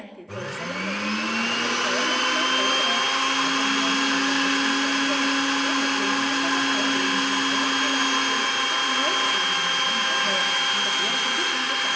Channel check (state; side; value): identical; both; correlation 1.00